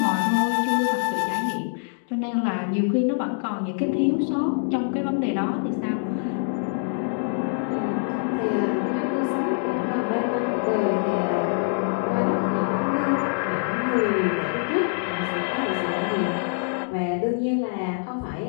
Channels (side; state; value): right; silent; digital silence